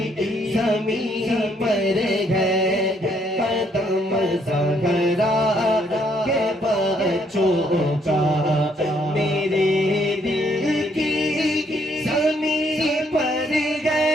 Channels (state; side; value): normal; both; correlation 0.69